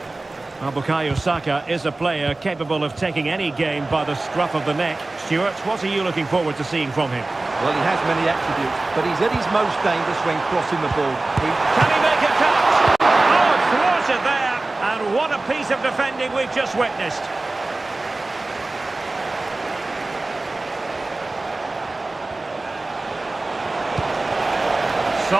Bukayo Saka is a player capable of taking any game by the scruff of the neck. Stuart, what are you looking forward to seeing from him? Well, he has many attributes, but he's at his most dangerous when crossing the ball. Can he make a catch? Oh, thwarted there. And what a piece of defending we've just witnessed.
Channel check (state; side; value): quieter; left; 3.1 dB